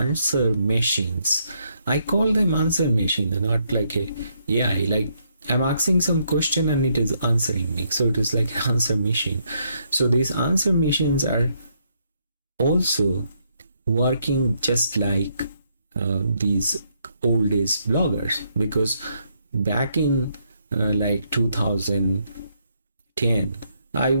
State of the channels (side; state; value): both; inverted; correlation -0.74